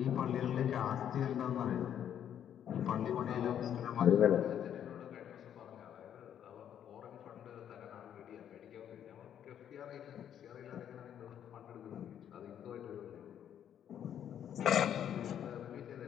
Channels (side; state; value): right; quieter; 9.7 dB